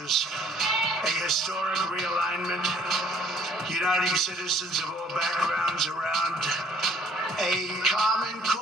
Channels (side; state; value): both; normal; correlation 0.60